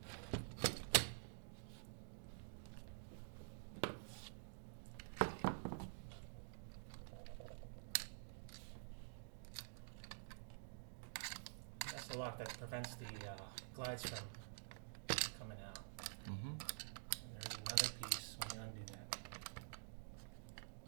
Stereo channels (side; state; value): left; silent; digital silence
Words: That's the lock that prevents the glides from coming out. Mm-hmm. And there's another piece when you undo that.